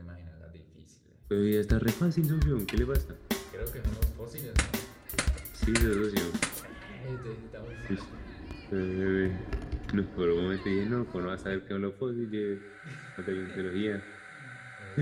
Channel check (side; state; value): both; identical; correlation 1.00